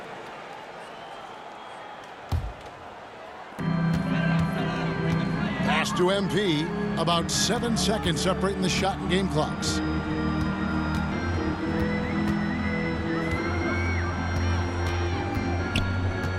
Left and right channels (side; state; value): both; identical; correlation 1.00